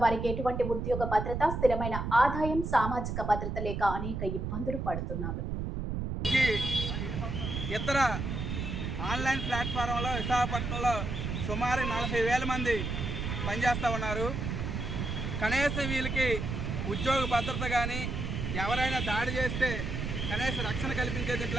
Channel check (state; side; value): noise; right; rumble, 3 dB below the sound